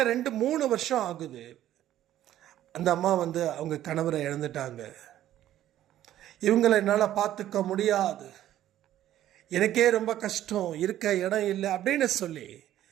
2-3 வருஷம் ஆகுது. அந்த அம்மா அவங்க கணவரை இழந்துட்டாங்க. இவங்களை என்னால் பார்த்துக்க முடியாது, எனக்கே ரொம்ப கஷ்டம், இருக்க இடம் இல்லை அப்படின்னு சொல்லி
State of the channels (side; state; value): left; quieter; 12.6 dB